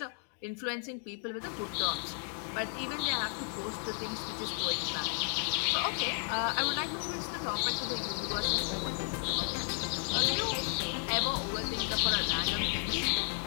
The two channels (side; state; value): right; silent; 55 dB below the other